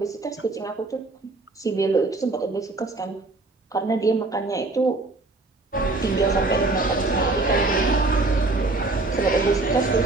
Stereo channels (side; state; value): left; quieter; 3.2 dB